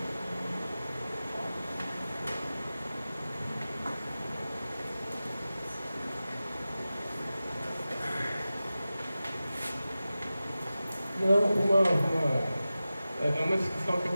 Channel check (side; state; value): both; inverted; correlation -0.95